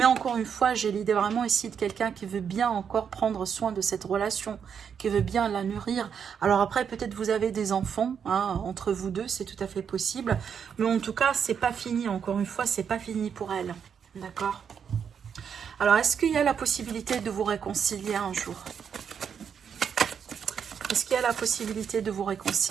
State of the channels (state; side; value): quieter; left; 7.3 dB